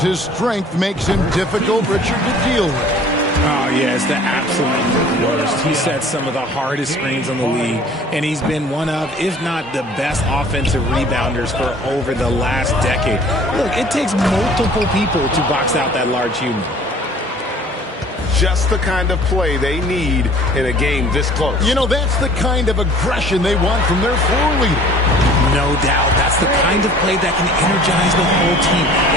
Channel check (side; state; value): both; normal; correlation 0.50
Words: his strength makes him difficult, Richard, to deal with. Oh, yeah, it's the absolute worst. He set some of the hardest screens in the league, and he's been one of, if not the best offensive rebounders for over the last decade. Look, it takes multiple people to box out that large human. Just the kind of play they need in a game this close. You know, that's the kind of aggression they want from their floor leader. No doubt. That's the kind of play that can energize the whole team,